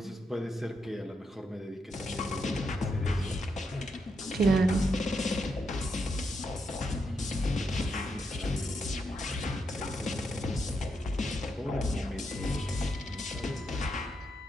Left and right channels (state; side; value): normal; both; correlation 0.82